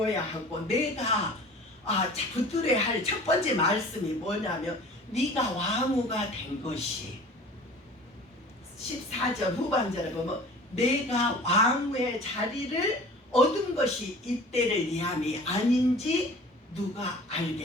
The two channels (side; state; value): both; normal; correlation 0.44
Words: 하고 내가 붙들어야 할 첫 번째 말씀이 뭐냐면 네가 왕후가 된 것이 14절 후반절에 보면 내가 왕후의 자리를 얻은 것이 이때를 위함이 아닌지 누가